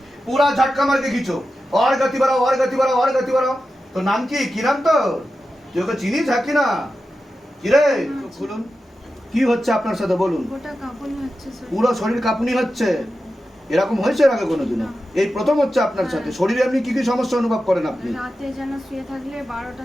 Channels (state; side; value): normal; both; correlation 0.91